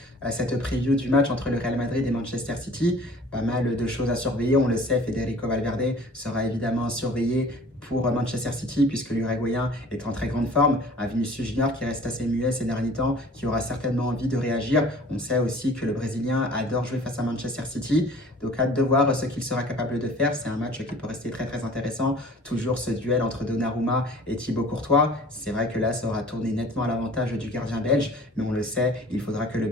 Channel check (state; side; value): normal; both; correlation 0.48